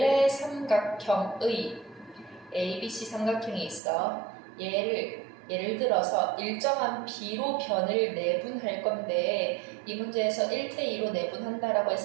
삼각형의 ABC 삼각형이 있어. 얘를 예를 들어서 일정한 b로 변을 내분할 건데 이 문제에서 1대2로 내분한다라고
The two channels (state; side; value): drops out; left; at 3.8 s